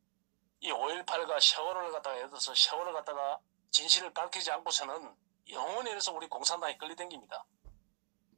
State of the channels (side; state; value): left; silent; digital silence